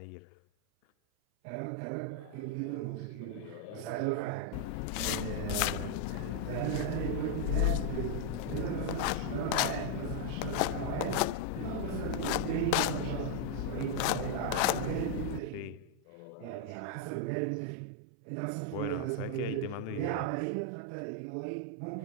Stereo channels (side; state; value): both; different; correlation 0.00